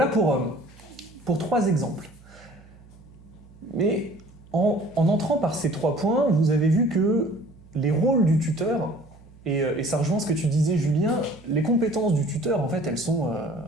pour 3 exemples. Mais en entrant par ces 3 points, vous avez vu que les rôles du tuteur, et ça rejoint ce que tu disais Julien, les compétences du tuteur, en fait, elles sont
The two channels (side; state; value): right; noise; hum, 24 dB below the sound